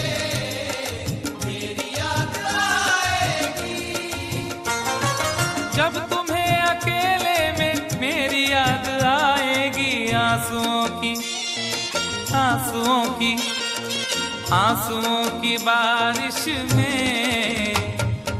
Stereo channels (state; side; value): identical; both; correlation 1.00